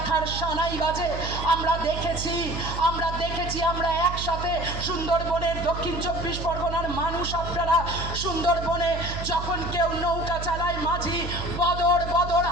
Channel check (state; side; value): noise; right; hum, 6 dB below the sound